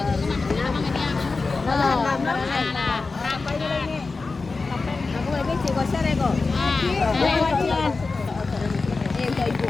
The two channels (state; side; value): quieter; right; 4.0 dB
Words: Aku lagi cikgu share ko. Kayak ibu